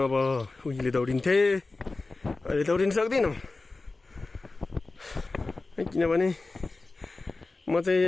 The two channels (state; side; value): quieter; right; 3.5 dB